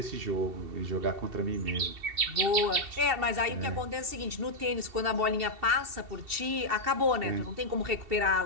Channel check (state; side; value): late; left; 2.7 ms